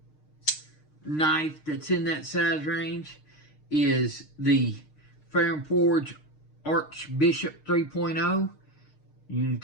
knife that's in that size range is the Fair & Forge Archbishop 3.0. You can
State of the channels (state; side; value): late; right; 6.5 ms